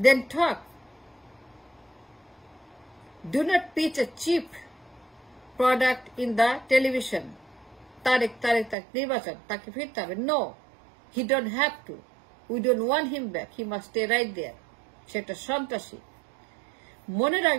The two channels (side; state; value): left; drops out; at 8.8 s